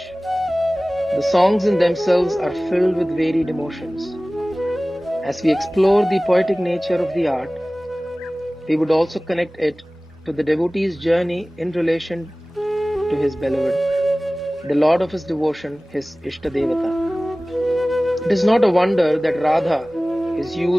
The songs in themselves are filled with varied emotions. As we explore the poetic nature of the art, we would also connect it to the devotee's journey in relation to his beloved, the Lord of his devotion, his Ishtadevata. It is not a wonder that Radha is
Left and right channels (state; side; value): normal; both; correlation 0.98